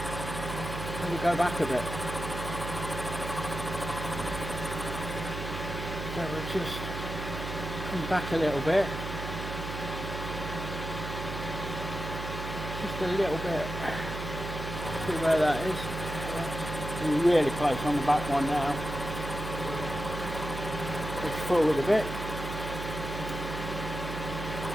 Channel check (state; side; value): noise; right; hum, 6 dB below the sound